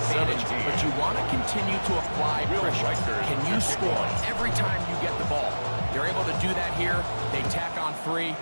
but you want to continue to apply pressure. Can you score every time you get the ball? They're able to do that here. They tack on 3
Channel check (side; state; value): both; inverted; correlation -1.00